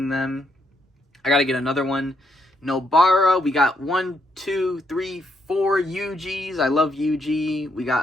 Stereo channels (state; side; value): normal; both; correlation 0.76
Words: them. I gotta get another one. Nobara, we got 1, 2, 3, 4 Yujis. I love Yuji. We